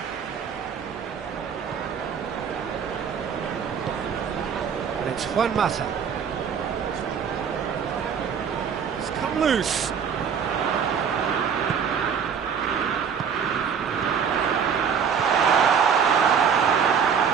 And it's Juan Mata. It's come loose.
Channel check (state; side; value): quieter; left; 7.1 dB